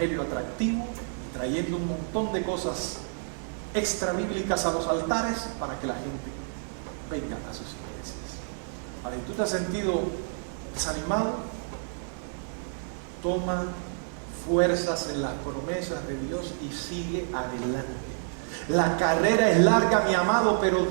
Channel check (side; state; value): left; silent; 59 dB below the other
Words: atractivo, y trayendo un montón de cosas extra bíblicas a los altares para que la gente venga a sus iglesias. Vale, ¿tú te has sentido desanimado? Toma fuerzas en las promesas de Dios y sigue adelante. La carrera es larga, mi amado, pero